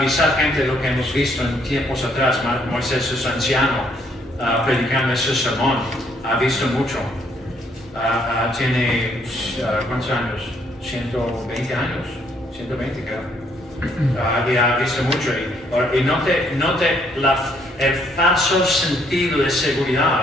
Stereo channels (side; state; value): both; normal; correlation 0.69